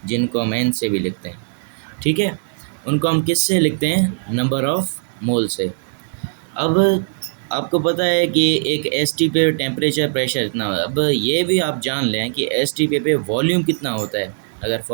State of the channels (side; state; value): left; silent; digital silence